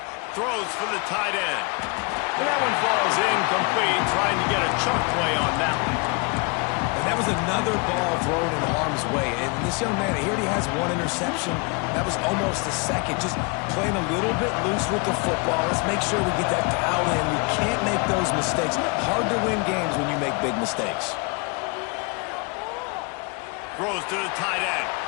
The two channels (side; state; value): right; quieter; 31.1 dB